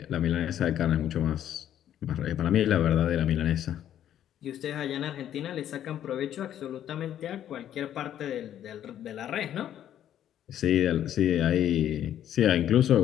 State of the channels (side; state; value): right; quieter; 10.9 dB